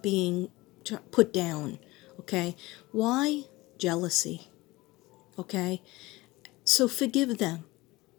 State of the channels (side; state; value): right; quieter; 20.5 dB